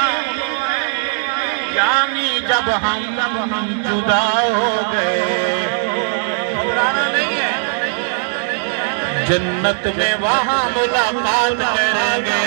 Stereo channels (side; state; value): left; silent; digital silence